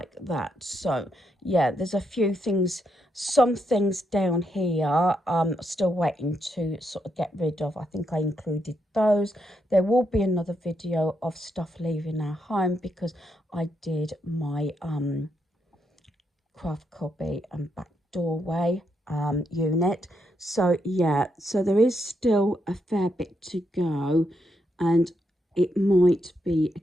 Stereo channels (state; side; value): normal; both; correlation 0.80